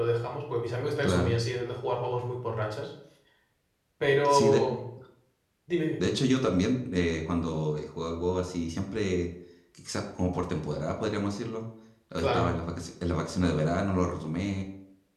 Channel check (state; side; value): identical; both; correlation 1.00